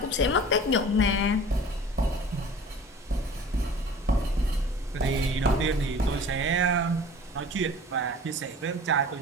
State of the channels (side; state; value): both; normal; correlation 0.43